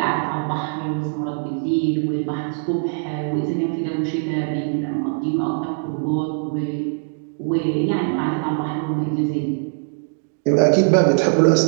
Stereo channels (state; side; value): silent; left; digital silence